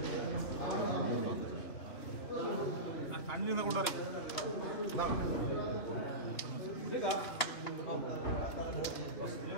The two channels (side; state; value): right; late; 3.1 ms